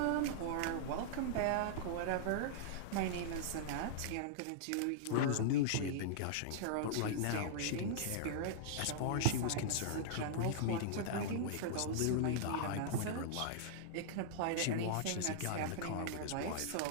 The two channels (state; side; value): different; both; correlation -0.02